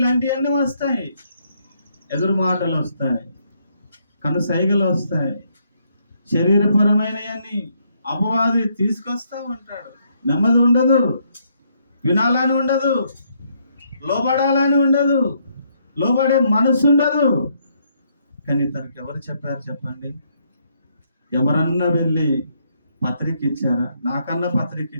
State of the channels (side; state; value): both; inverted; correlation -0.72